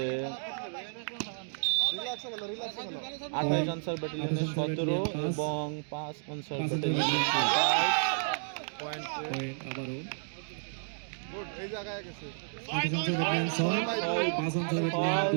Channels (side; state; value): left; silent; digital silence